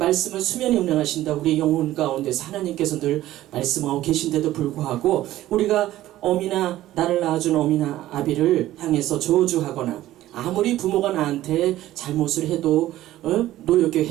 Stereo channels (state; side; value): quieter; left; 14.6 dB